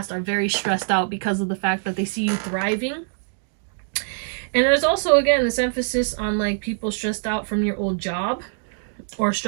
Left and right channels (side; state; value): left; silent; digital silence